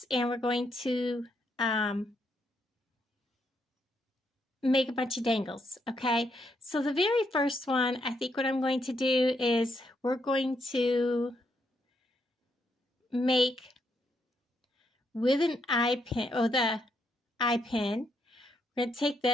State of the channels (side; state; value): both; normal; correlation 0.77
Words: and we're going to make a bunch of dangles. Okay, so the very first one, I think what I'm going to do is we're going to make with an eye pin, or the eye pin. We're going to take